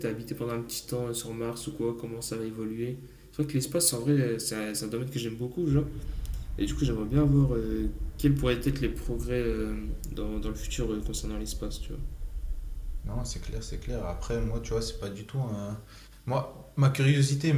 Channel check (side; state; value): both; identical; correlation 1.00